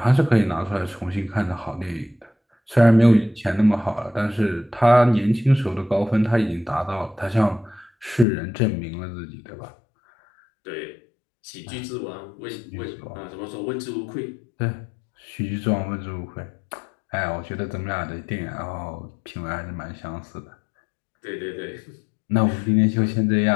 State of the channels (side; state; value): right; drops out; at 8.2 s